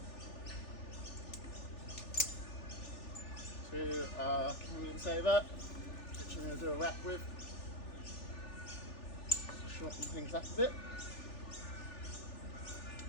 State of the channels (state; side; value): late; right; 3.4 ms